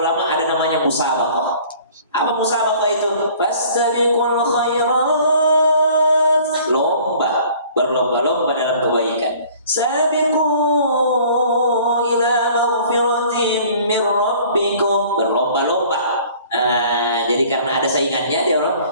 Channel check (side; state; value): both; inverted; correlation -0.52